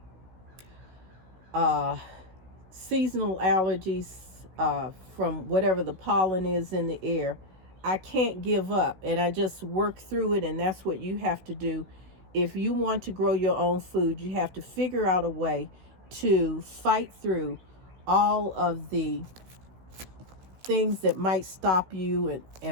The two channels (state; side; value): late; left; 16 ms